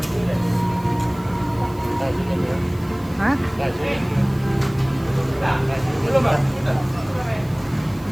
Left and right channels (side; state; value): right; noise; hiss, 25 dB below the sound